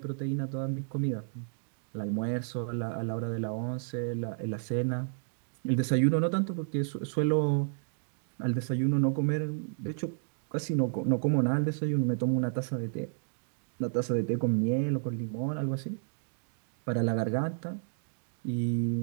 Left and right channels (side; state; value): left; silent; digital silence